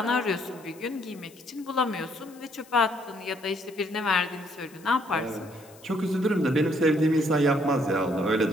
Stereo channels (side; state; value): left; noise; hiss, 24 dB below the sound